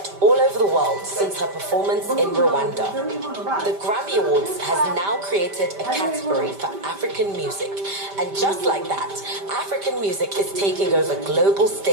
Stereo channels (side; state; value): left; late; 5.1 ms